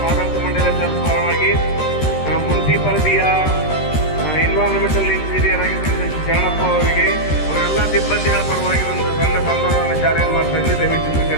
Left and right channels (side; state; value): right; late; 13 ms